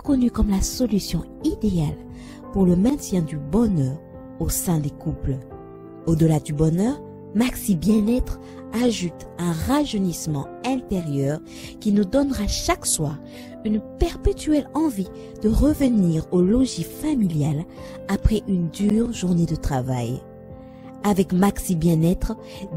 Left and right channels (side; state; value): both; identical; correlation 1.00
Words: comme la solution idéale pour le maintien du bonheur au sein des couples. Au-delà du bonheur, Maxi Bien-être ajoute un rajeunissement intérieur qui nous donnera chaque soir une perpétuelle envie de revenir au logis familial après une dure journée de travail. Avec Maxi Bien-être,